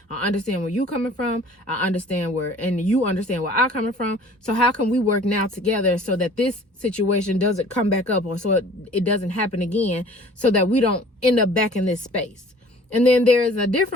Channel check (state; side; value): normal; both; correlation 0.50